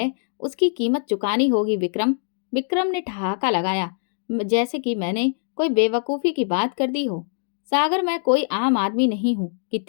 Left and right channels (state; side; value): silent; right; digital silence